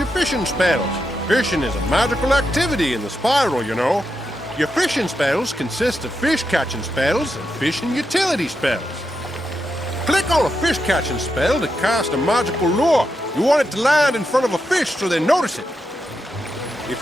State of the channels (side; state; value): both; normal; correlation 0.85